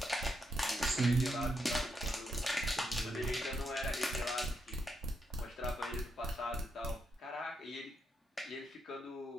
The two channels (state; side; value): normal; both; correlation 0.81